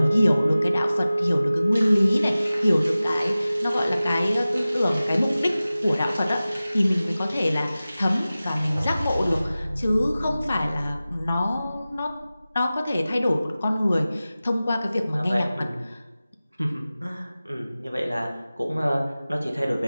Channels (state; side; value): inverted; both; correlation -0.96